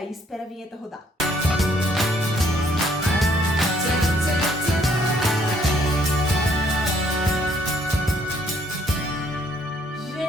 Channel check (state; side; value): normal; both; correlation 0.66